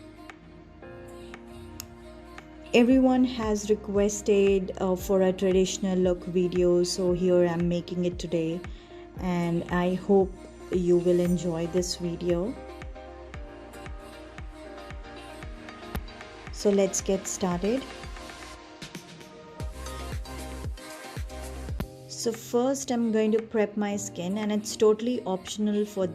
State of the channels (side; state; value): both; identical; correlation 1.00